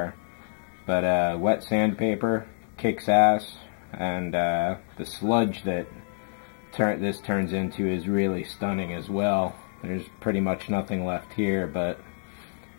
But wet sandpaper kicks ass, and the sludge that this turns into is really stunning as well. There's pretty much nothing left here, but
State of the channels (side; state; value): right; silent; digital silence